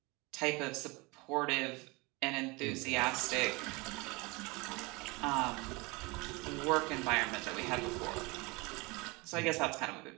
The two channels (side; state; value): left; quieter; 25.8 dB